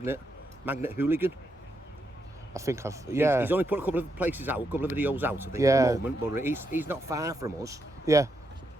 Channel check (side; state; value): both; normal; correlation 0.81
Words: Hooligan. I think I've. Yeah. He's only put a couple of places out, a couple of videos out, I think, Yeah. at the moment, but he's not far from us. Yeah.